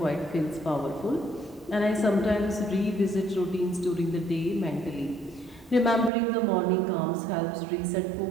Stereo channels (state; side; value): drops out; left; at 6.1 s